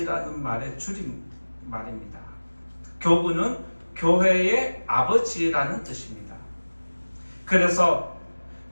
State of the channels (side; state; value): both; inverted; correlation -1.00